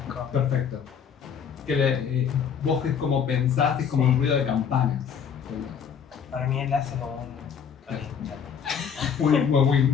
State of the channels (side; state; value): right; quieter; 7.3 dB